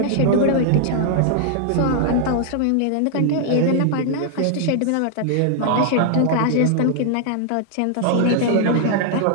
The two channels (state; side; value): different; both; correlation 0.00